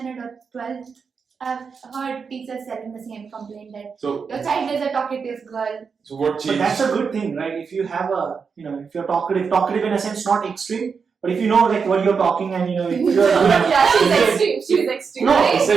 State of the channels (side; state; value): left; quieter; 5.7 dB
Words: or 12th, I've heard teachers telling the same complaint that So your child is a talkative girl. what But changed? that's a good thing, right? If you have if you're talkative in a sense, not extreme, but if you know like what you're talking and you're Yeah, she's extreme. She's extreme. No, right? It's like